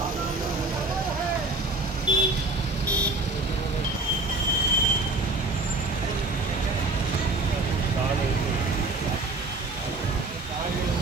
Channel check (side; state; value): left; quieter; 3.1 dB